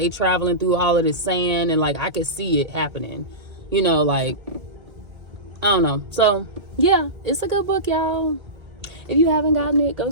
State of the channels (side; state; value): left; late; 1.8 ms